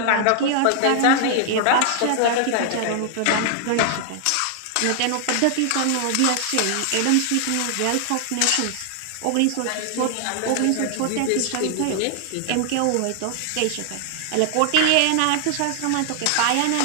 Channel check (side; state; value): both; different; correlation 0.00